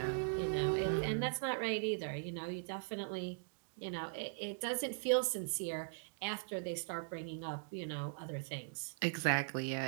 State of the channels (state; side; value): silent; left; digital silence